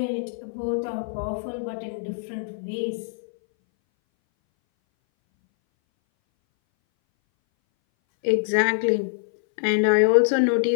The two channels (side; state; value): right; silent; 61 dB below the other